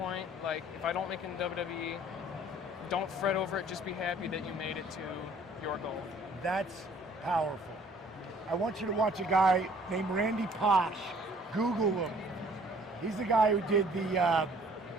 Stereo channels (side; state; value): both; normal; correlation 0.56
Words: like if I don't make it in WWE, don't fret over it, just be happy that you made it to your goal. That's Powerful. I want you to watch a guy named Randy Posh. Google him. He's the guy who did the